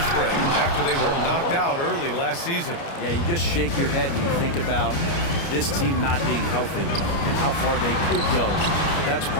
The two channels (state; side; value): late; right; 29 ms